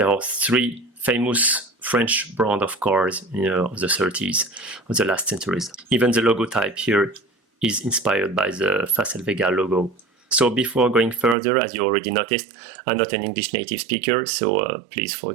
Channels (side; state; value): left; drops out; at 11.4 s